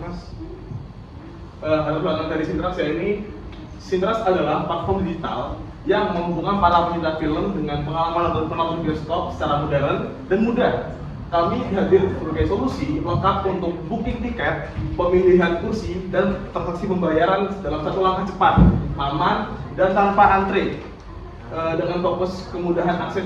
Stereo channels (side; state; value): both; identical; correlation 1.00